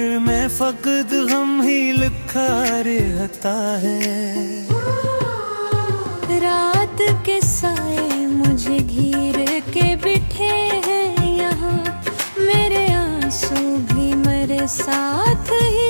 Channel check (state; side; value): inverted; both; correlation -1.00